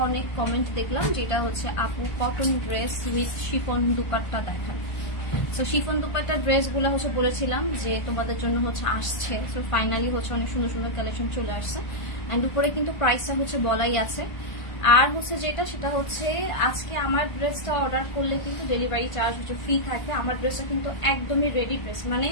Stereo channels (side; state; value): right; late; 1.5 ms